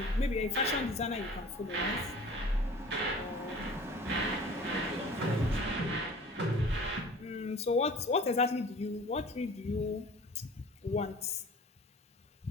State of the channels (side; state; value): both; normal; correlation 0.44